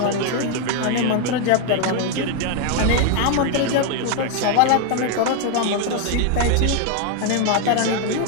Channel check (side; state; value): both; different; correlation 0.01